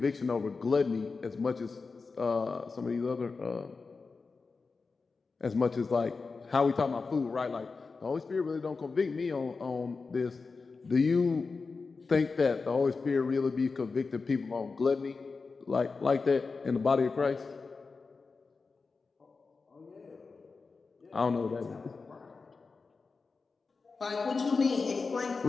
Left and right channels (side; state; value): right; quieter; 4.4 dB